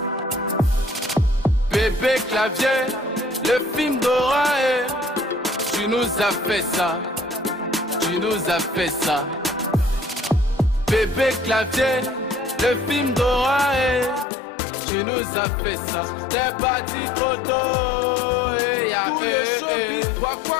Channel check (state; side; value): drops out; right; at 14.2 s